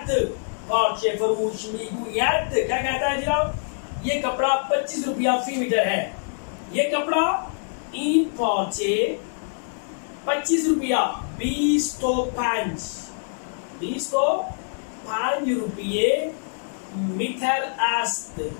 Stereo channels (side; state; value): right; silent; digital silence